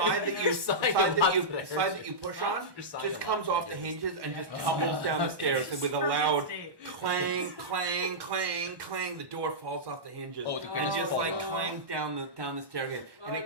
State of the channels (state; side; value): late; left; 1.1 ms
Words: that you Side the side that you push on just comes off the hinges and just tumbles down the stairs, and with a loud clang, clang, clang, clang, the door falls off the hinges. Oh, the and grates just fall like off. clang down the staircase, and Oh, it